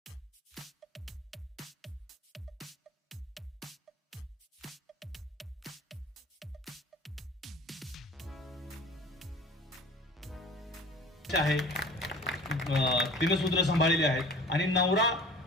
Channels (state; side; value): normal; both; correlation 0.42